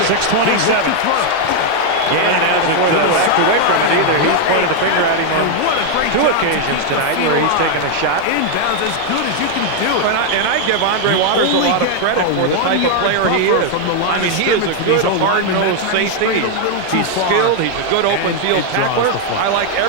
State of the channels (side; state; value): both; different; correlation 0.00